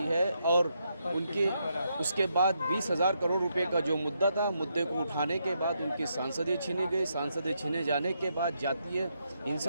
है और उनकी उसके बाद 20,000 करोड़ रुपए का जो मुद्दा था, मुद्दे को उठाने के बाद उनकी सांसदें छीनी गई। सांसदें छीने जाने के बाद जातीय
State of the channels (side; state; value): both; inverted; correlation -0.79